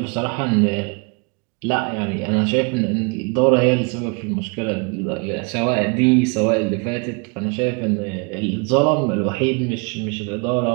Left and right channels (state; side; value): quieter; left; 33.1 dB